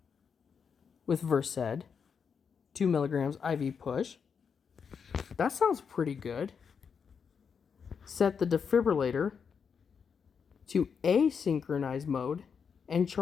with Versed. 2 milligrams IV push. That sounds pretty good. Set the defibrillator to asynchronized mode and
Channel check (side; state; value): right; quieter; 6.4 dB